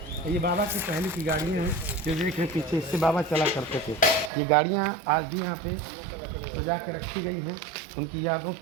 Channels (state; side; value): drops out; left; at 4.3 s